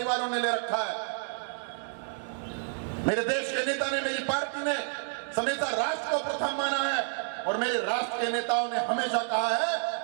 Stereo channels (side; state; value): left; silent; digital silence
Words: ने ले रखा है। मेरे देश के नेता ने, मेरी पार्टी ने हमेशा राष्ट्र को प्रथम माना है और मेरे राष्ट्र के नेताओं ने हमेशा कहा है